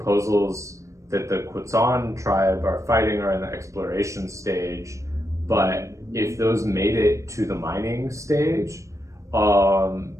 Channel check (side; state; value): left; late; 0.15 ms